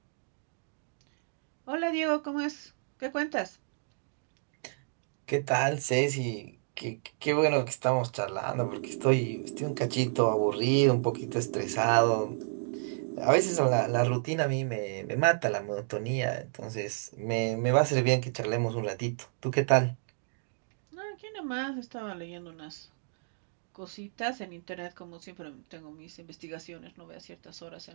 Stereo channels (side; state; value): left; silent; digital silence